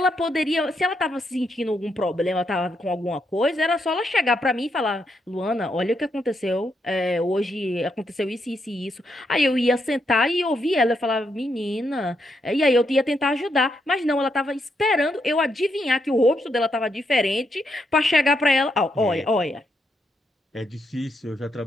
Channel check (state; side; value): normal; both; correlation 0.79